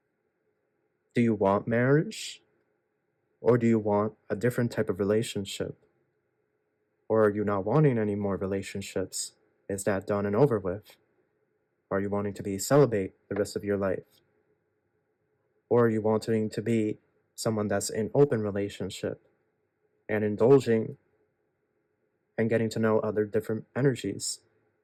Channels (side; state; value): both; identical; correlation 1.00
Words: Do you want marriage? Or do you want a different type of relationship? Or are you not wanting any more relationships? Is that done and over with? Are you wanting to be celibate the rest of your life? Or are you wanting to be someone that's in open relationship and indulging and getting to know other different energies?